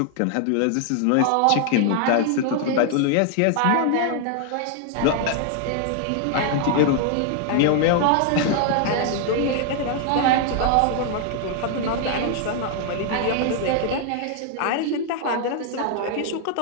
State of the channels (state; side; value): different; both; correlation 0.00